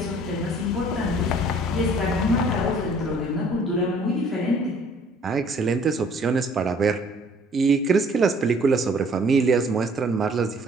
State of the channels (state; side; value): normal; both; correlation 0.56